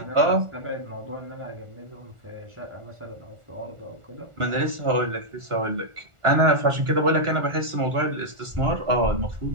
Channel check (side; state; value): left; late; 1.4 ms